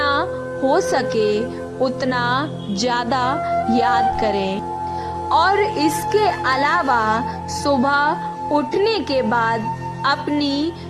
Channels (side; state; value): both; identical; correlation 1.00